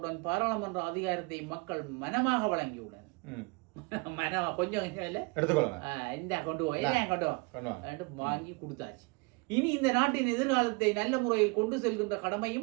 பாராளுமன்ற அதிகாரத்தை மக்கள் மனமாக வழங்கியுள்ளனர். மனமா கொஞ்சம் இல்ல இந்த கொண்டு போய் வாங்கி கொடுத்தாச்சு. இனி இந்த நாட்டின் எதிர்காலத்தை நல்ல முறையில் கொண்டு செல்கின்ற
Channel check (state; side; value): quieter; left; 30.1 dB